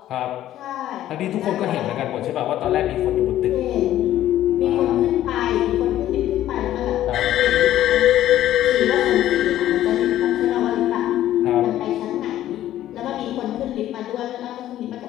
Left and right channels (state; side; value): quieter; right; 12.9 dB